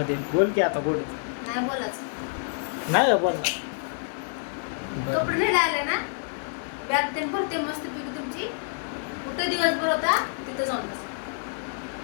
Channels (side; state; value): right; silent; digital silence